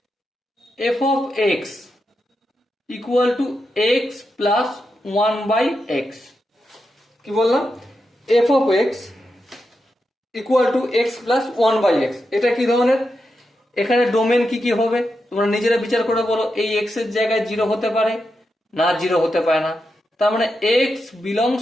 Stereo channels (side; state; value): both; normal; correlation 0.87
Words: F of X equal to x plus 1/x। কি বললাম? F of X equal to x plus 1/x। এটা কি ধরনের? এখানে ডোমেন কি কি হবে তোমরা নিজেরা বিচার করে বলো। এই এক্স এর জায়গায় 0 হতে পারে না, 0 হতে পারে না। তার মানে এক্স